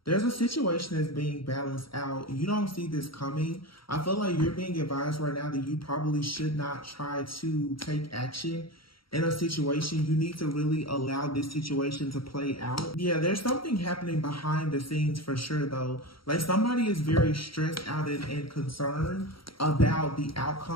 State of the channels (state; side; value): late; right; 0.74 ms